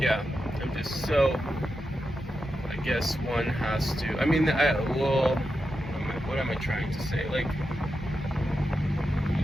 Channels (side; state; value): both; normal; correlation 0.88